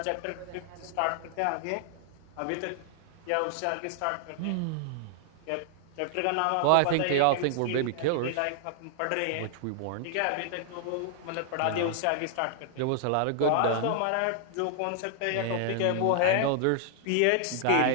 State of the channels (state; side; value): different; both; correlation 0.00